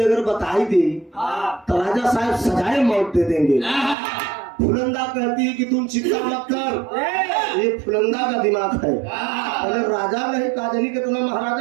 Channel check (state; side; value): drops out; left; at 4.0 s